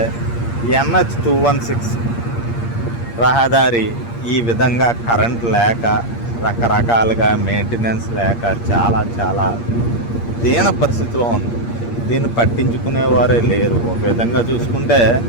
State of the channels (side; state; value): right; late; 8.6 ms